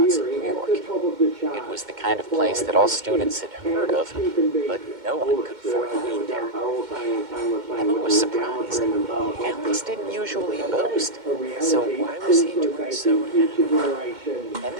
in New York. It was the kind of place that all students had heard of, but no one could afford to eat there. Emma was surprised. Alex didn't usually boast, so why was he doing so now? And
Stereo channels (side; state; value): left; late; 2.1 ms